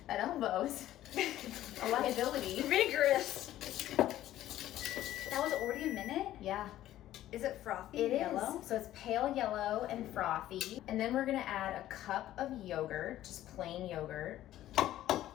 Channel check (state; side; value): quieter; right; 13.6 dB